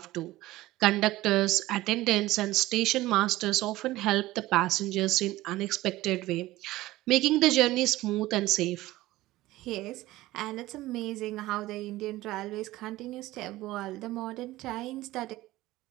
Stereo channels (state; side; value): quieter; left; 17.3 dB